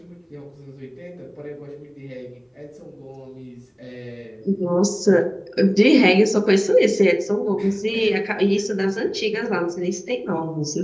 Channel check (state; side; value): identical; both; correlation 1.00